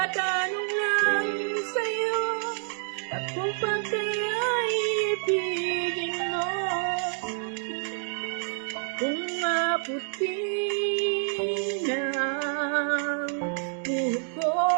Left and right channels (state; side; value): silent; left; 59 dB below the other